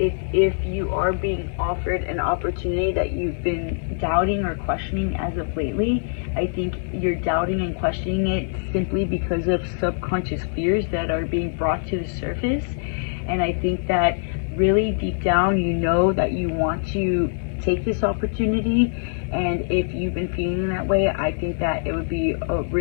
if you are being offered an opportunity that you've been doubting or questioning as of lately, I think you're doubting and questioning it simply because of subconscious fears that are being brought to the surface. And I think that really deep down you know that you want to take this opportunity, and if you've been feeling that way, I think that it would be a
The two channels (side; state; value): right; silent; digital silence